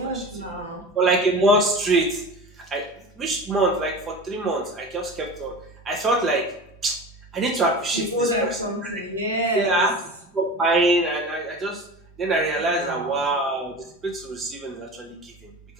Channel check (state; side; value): normal; both; correlation 0.32